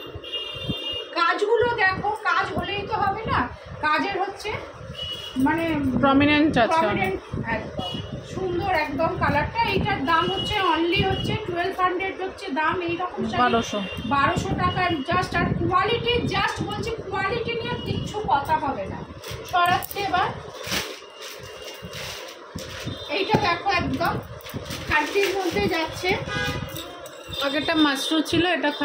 কাজগুলো দেখো, কাজ হলেই তো হবে না, কাজের হচ্ছে মানে প্রমিনেন্ট আছে, প্রমিনেন্ট একদম সুন্দর একদম কালারটা। এইটার দাম হচ্ছে অনলি হচ্ছে 1200 হচ্ছে দাম। এইরকম 1200 টাকার জাস্ট। আর কোয়ালিটি জাস্ট বলছি, কোয়ালিটি নিয়ে কিচ্ছু কথা হবে না। সরাচ্ছে এবার। এইটা দেখো একদম খাদ্যের মধ্যে যাচ্ছে। আগেরটা মাশরুম ছিল, এটা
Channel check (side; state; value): both; identical; correlation 1.00